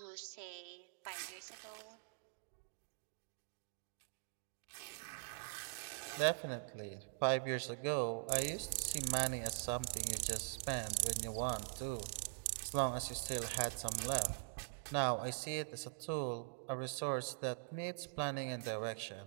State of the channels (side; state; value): left; silent; digital silence